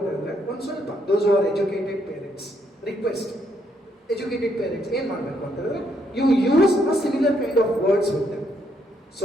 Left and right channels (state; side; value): normal; both; correlation 0.74